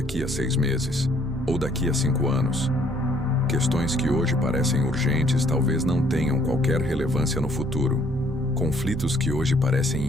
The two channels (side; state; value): both; normal; correlation 0.64